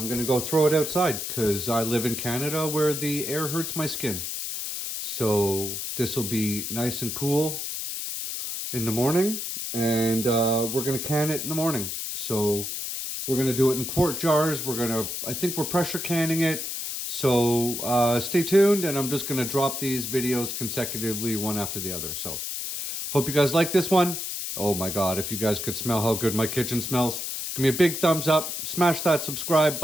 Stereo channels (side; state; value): left; noise; hiss, 4 dB below the sound